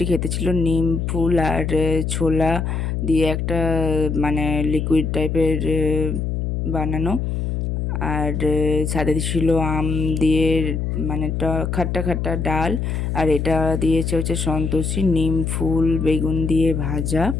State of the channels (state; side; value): noise; left; hum, 1 dB below the sound